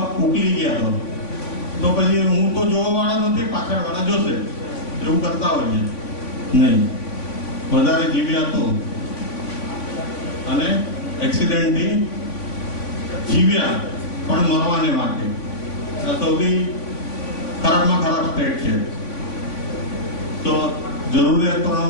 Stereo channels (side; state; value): right; late; 3.5 ms